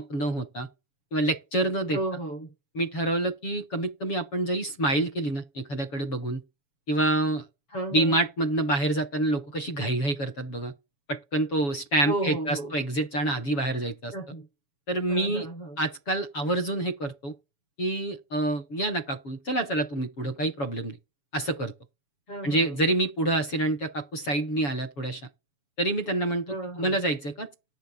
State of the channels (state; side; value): late; right; 7.1 ms